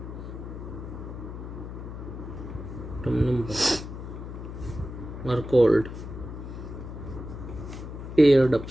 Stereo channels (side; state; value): left; noise; hum, 9 dB below the sound